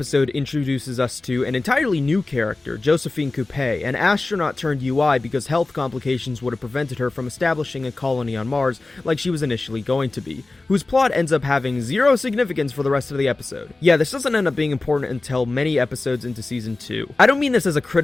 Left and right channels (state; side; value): quieter; right; 3.2 dB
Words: introduces us to an entirely new character, Josephine Coupe, an astronaut turned UI because health complications would have prevented her from establishing a colony on Mars like she was initially going to be, whose plot ends up having zero significance for the rest of the episode. Yeah, this doesn't end up being important until many episodes into season 2. I don't mean this as a